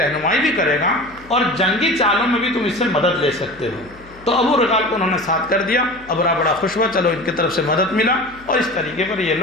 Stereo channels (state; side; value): noise; left; hum, 23 dB below the sound